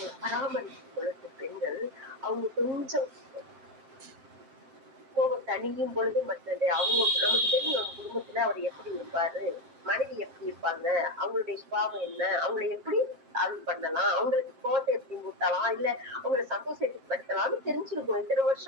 பராமரிக்கும் பொழுது பெண்கள் அவங்க கொஞ்சம் கோபம் தணியும் பொழுது மற்றது அவங்க நமக்கு தெரியும். அவங்க குடும்பத்துல அவர் எப்படி இருப்பாரு, மனைவி எப்படி இருப்பாங்க, அவங்களுடைய சுபாவம் என்ன, அவங்களை எப்படி அருள் பண்ணலாம், அவங்களுக்கு கோபத்தை எப்படி ஊட்டலாம், இல்ல அவங்களை சந்தோஷத்துக்கு படுத்தலாம்னு தெரிஞ்சிருக்கோம். இத்தனை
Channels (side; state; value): left; late; 7.6 ms